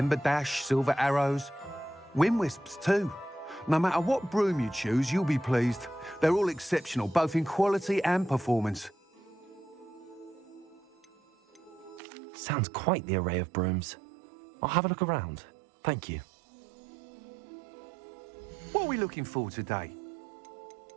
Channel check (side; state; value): left; drops out; at 12.0 s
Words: Dash, Silver Arrows, Wind Wisps too. No matter what broom you choose, you'll be pleased. They're all exceptional, both in quality and performance. Sounds quite the array of brooms. I'll have a look around. Thank you. What are we looking for today?